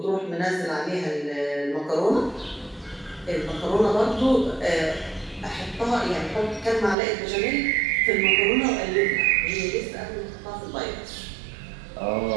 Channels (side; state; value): left; drops out; at 7.0 s